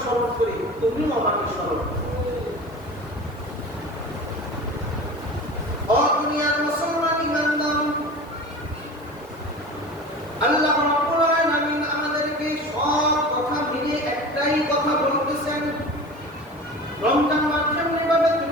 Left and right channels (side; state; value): left; noise; hiss, 30 dB below the sound